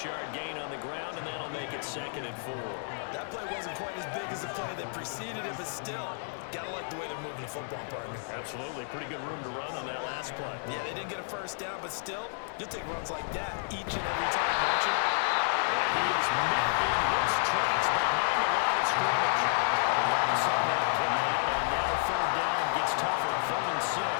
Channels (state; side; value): silent; right; digital silence